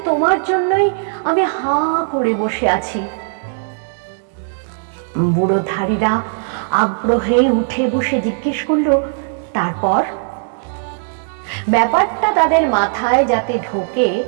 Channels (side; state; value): left; silent; digital silence